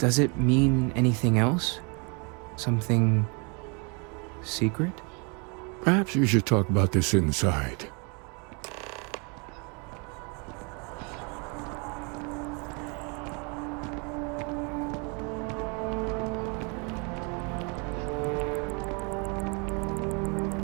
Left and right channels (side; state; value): left; quieter; 33.7 dB